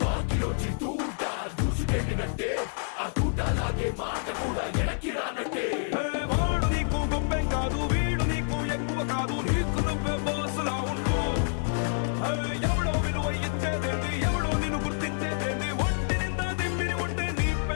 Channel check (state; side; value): silent; right; 59 dB below the other